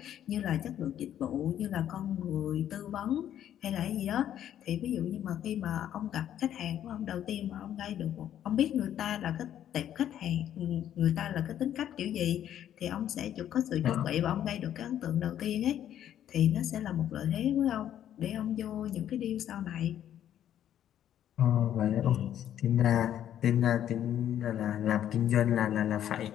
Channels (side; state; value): right; quieter; 10.8 dB